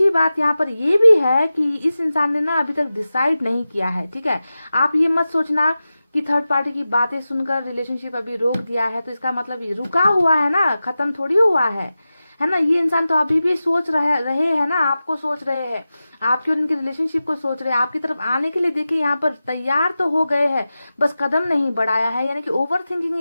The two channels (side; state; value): both; inverted; correlation -0.94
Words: बात यहाँ पर ये भी है कि इस इंसान ने ना अभी तक डिसाइड नहीं किया है, ठीक है। आप ये मत सोचना कि थर्ड पार्टी की बातें सुनकर रिलेशनशिप अभी रोक दिया है तो इसका मतलब ये रुका हुआ है ना, खत्म थोड़ी हुआ है ना। ये इंसान तो अभी भी सोच रहे हैं ना, आपको सोच रहे हैं, आपके और इनके रिलेशनशिप को सोच रहे हैं, आपकी तरफ आने के लिए देखिए यहाँ पर तैयार तो हो गए हैं, बस कदम नहीं बढ़ाया है, यानी कि ओवर थिंकिंग